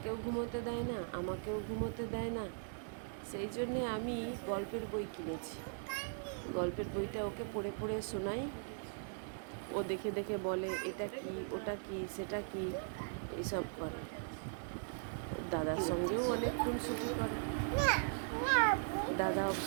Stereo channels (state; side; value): silent; left; digital silence